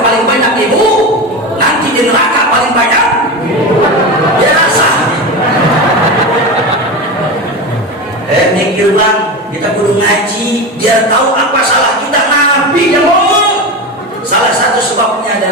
paling banyak ibu, nanti di neraka paling banyak ya rasa. Mikir bang, kita kudu ngaji biar tahu apa salah kita. Nabi yang ngomong salah satu sebabnya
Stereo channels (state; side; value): normal; both; correlation 0.22